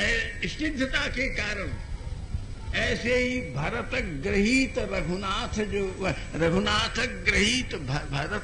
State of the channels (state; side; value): identical; both; correlation 1.00